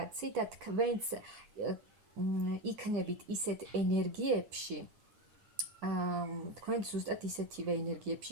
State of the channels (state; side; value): late; left; 9.8 ms